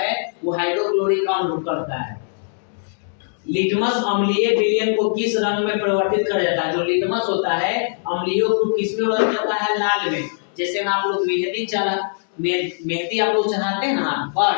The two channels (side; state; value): right; silent; digital silence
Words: वो हाइड्रोक्लोरिक अम्ल करता है। लिटमस अम्लीय विलयन को किस रंग में परिवर्तित कर जाता है? जो लिटमस होता है अम्लीय को किस में बदल जाता है? लाल में। जैसे में आप लोग मेहंदी आप लोग चढ़ाते हैं ना पर,